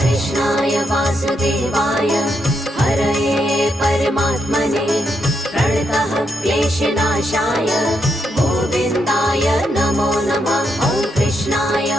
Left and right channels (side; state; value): both; normal; correlation 0.80